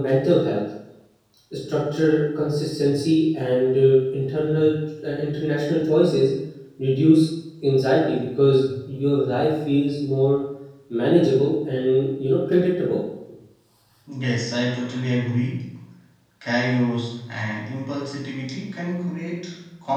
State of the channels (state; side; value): identical; both; correlation 1.00